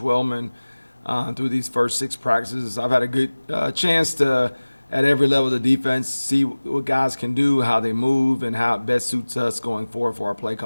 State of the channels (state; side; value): inverted; both; correlation -1.00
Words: through these first 6 practices. I've had a good chance to at every level of the defense see what guys can do, how they move, and how it best suits us going forward for our play